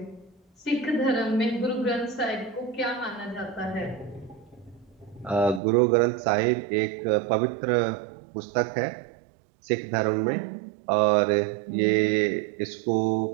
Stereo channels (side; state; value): left; drops out; at 5.6 s